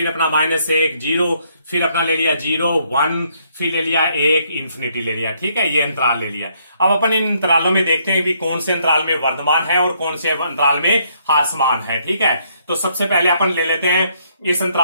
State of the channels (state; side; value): inverted; both; correlation -0.70